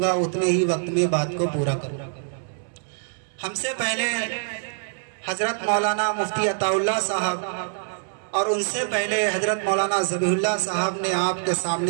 گا اتنے ہی وقت میں بات کو پورا کروں۔ ہم سے پہلے حضرت مولانا مفتی عطا اللہ صاحب اور ان سے پہلے حضرت مولانا ذبیح اللہ صاحب نے آپ کے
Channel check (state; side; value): silent; left; 62 dB below the other